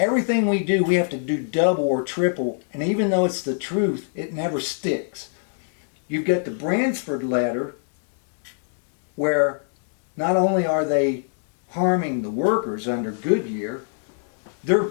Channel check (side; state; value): right; silent; digital silence